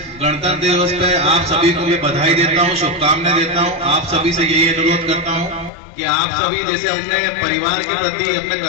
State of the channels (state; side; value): drops out; right; at 5.7 s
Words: गणतंत्र दिवस पे आप सभी को मैं बधाई देता हूँ, शुभकामनाएं देता हूँ। आप सभी से यही अनुरोध करता हूँ कि आप सभी जैसे अपने परिवार के प्रति अपने